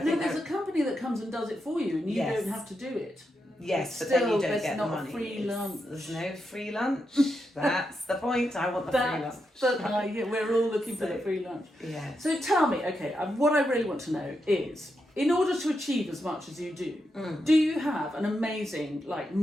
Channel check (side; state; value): both; normal; correlation 0.85